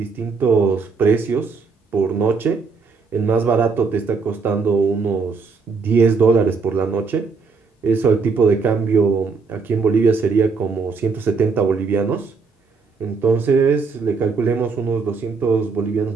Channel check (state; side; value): quieter; left; 4.8 dB